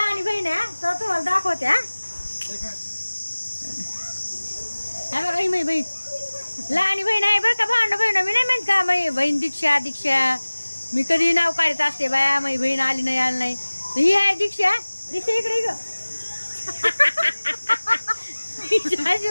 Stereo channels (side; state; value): both; inverted; correlation -1.00